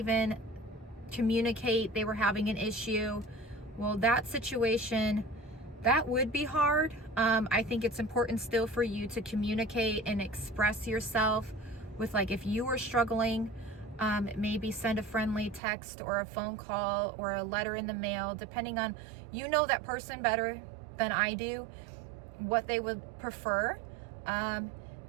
communicate they were having an issue, Well, that situation, that would be hard. I think it's important still for you to communicate and express yourself with, like, if you were struggling, maybe send a friendly text or a phone call or a letter in the mail, depending on, you know that person better than I do, what they would prefer.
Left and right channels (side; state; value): left; drops out; at 15.6 s